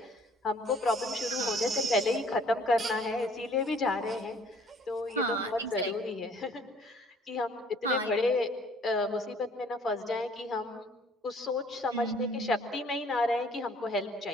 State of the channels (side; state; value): both; normal; correlation 0.57